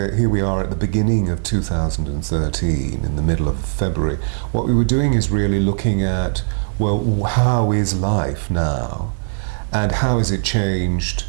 we are at the beginning of 2013, in the middle of February, what we were doing is really looking at, well, how is life now? And how has it changed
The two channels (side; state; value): left; silent; digital silence